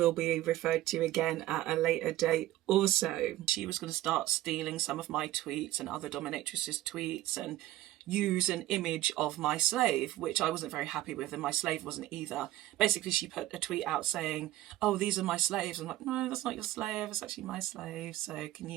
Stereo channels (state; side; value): quieter; left; 15.4 dB